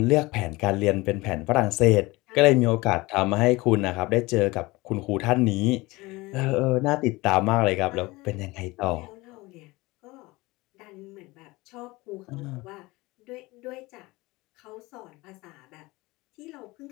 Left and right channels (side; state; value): right; quieter; 21.8 dB